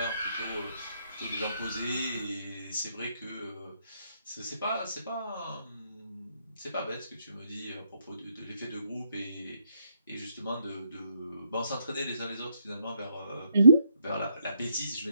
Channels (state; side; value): inverted; both; correlation -0.73